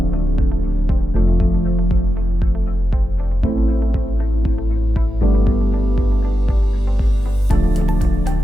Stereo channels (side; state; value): both; normal; correlation 0.90